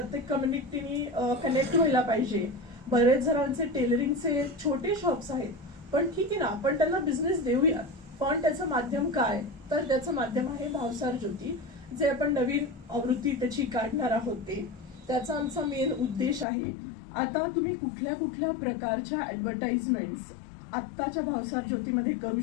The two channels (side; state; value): right; drops out; at 16.4 s